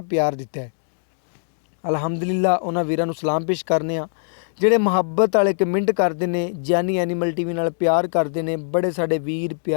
प्यार दिता है। अलहमदुलिल्लाह उन्हां वीरां नूं सलाम पेश करने आ ਜਿਹੜੇ ਮੁਹੱਬਤ वाले कमेंट करते हैं, जानी एनीमल टीवी नाल प्यार करते हैं। बड़े साडे वीर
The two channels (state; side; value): silent; right; digital silence